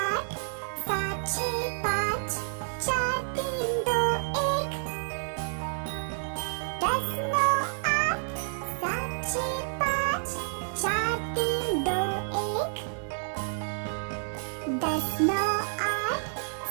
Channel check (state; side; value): silent; left; digital silence